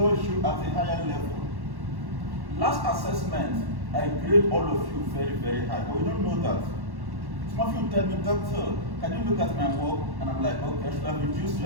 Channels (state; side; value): late; left; 1.1 ms